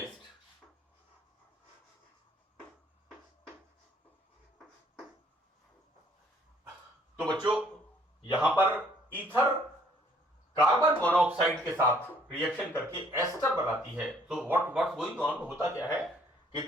तो बच्चों यहां पर ईथर कार्बन मोनोऑक्साइड के साथ रिएक्शन करके एस्टर बनाती है. तो व्हाट्स गोइंग ऑन, होता क्या है कि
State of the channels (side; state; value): both; normal; correlation 0.62